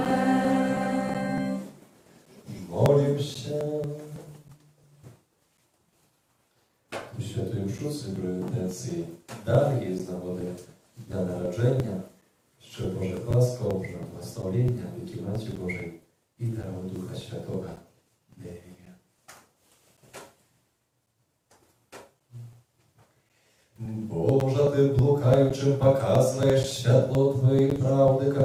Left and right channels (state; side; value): identical; both; correlation 1.00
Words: Молим się. У Świętej Mszy Celebracji dalej jest nagody Dnia Narodzenia щоб Боже ласка, Боже благословення, віки Матері Божої і дару Духа Святого. Амінь. Боже, Ты блукаючим показываешь святло Твоей правды,